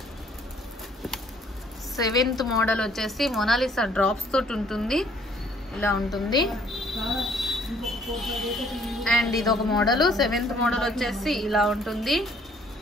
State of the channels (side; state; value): both; normal; correlation 0.61